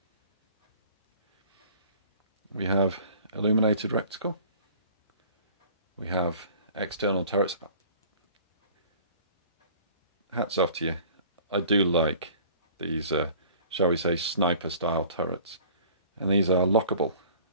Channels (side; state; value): both; inverted; correlation -0.49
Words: We have illuminated reticle. We have external turrets. Hats off to you. I do like these, shall we say, sniper style turrets. And these are lockable